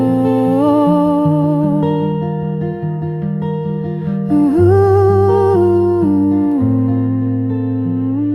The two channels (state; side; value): identical; both; correlation 1.00